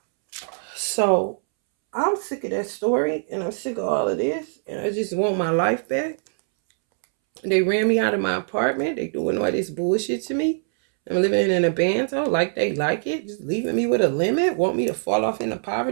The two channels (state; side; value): silent; left; 63 dB below the other